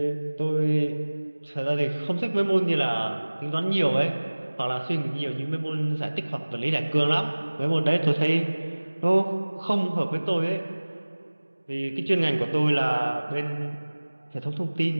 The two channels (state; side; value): inverted; both; correlation -1.00